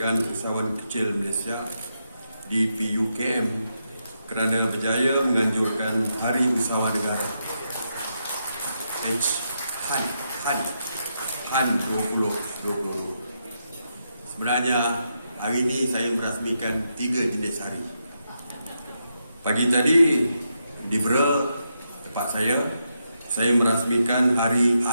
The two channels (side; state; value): both; inverted; correlation -0.83